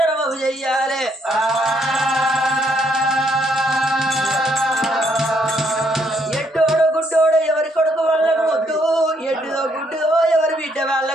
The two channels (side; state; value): both; normal; correlation 0.72